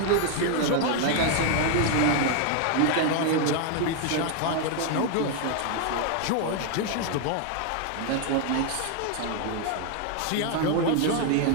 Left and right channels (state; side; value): different; both; correlation 0.00